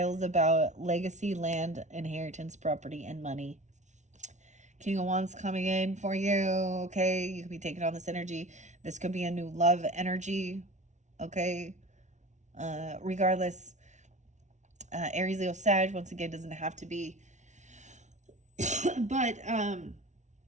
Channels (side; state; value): left; late; 0.34 ms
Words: about legacy, land, inheritance, property, and money. King of Wands coming in for you. Okay, you could be taking on this energy. This could be a new love energy. Okay. Regardless, Aries, Leo, Sag, once again, doesn't have to be. But